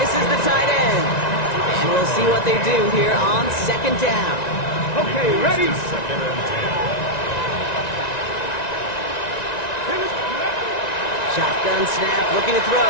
the tight end. And we'll see what they do here on second down. Okay, ready? Shotgun snap, looking to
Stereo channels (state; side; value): late; right; 1.9 ms